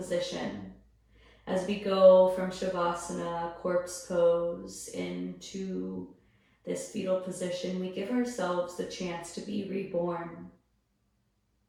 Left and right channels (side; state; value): both; identical; correlation 1.00